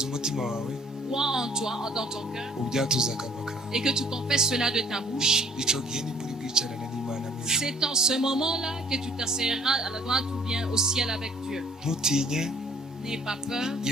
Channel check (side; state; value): both; normal; correlation 0.57